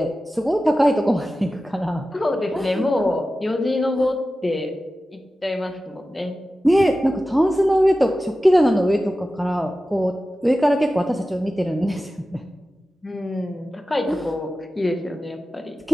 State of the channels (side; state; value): both; normal; correlation 0.94